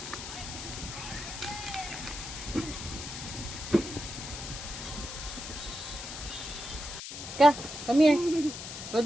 Ka, come here. Go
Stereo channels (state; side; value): noise; left; hiss, 8 dB below the sound